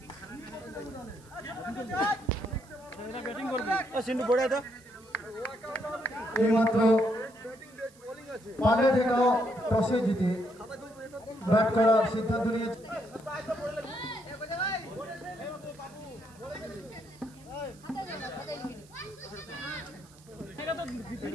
ব্যাটিং করবে। সিন্টু পড়ে দাও। এইমাত্র পালে থেকেও টসে জিতে ব্যাট করার সিদ্ধান্ত নিয়েছে।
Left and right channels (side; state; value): right; noise; hiss, 26 dB below the sound